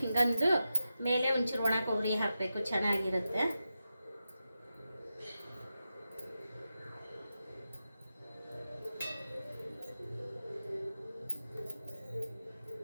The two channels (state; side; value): inverted; both; correlation -0.90